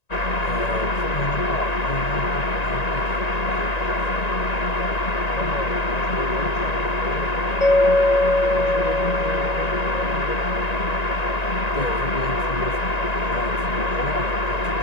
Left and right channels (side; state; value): right; late; 1.9 ms